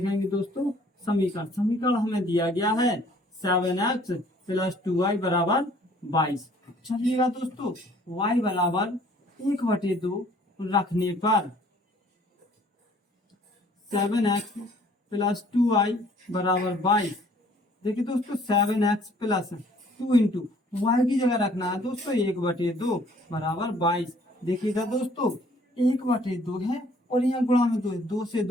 दोस्तों? समीकरण। समीकरण हमें दिया गया है 7x प्लस 2y बराबर 22। चलिएगा दोस्तों, y बराबर 1/2 रखने पर 7x प्लस 2y बराबर 22। देखिए दोस्तों, 7x प्लस 2 इंटू वाई की जगह रखना है दोस्तों 1/2 बराबर 22। देखिएगा दोस्तों, 1/2 है और यहाँ गुणा में 2 है, 2 से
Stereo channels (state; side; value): normal; both; correlation 0.58